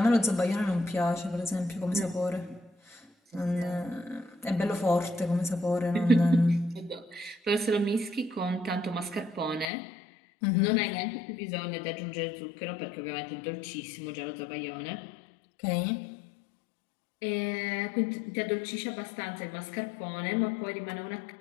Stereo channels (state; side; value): drops out; right; at 9.7 s